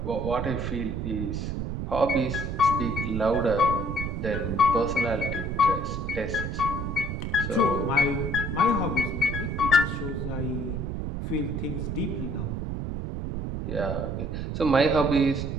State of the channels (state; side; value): noise; right; rumble, 3 dB below the sound